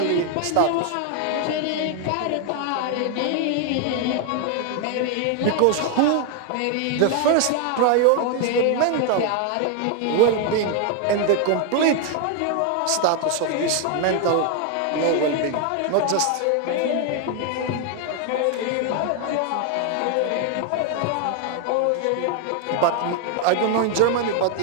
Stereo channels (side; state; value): both; different; correlation 0.00